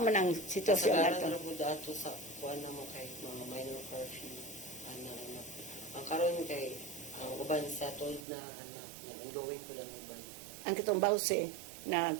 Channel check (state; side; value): drops out; left; at 8.2 s